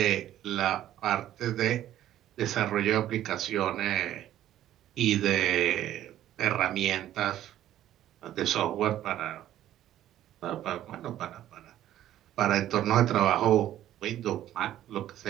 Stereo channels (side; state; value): left; quieter; 12.5 dB